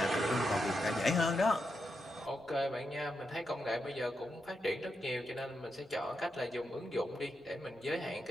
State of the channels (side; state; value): both; normal; correlation 0.85